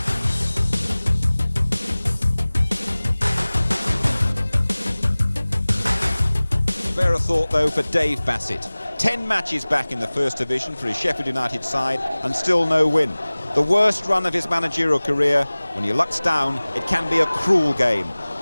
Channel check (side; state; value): both; inverted; correlation -0.99